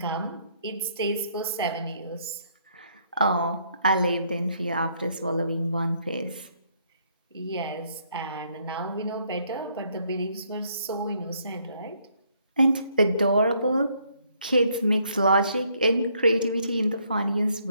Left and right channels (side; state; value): both; inverted; correlation -0.69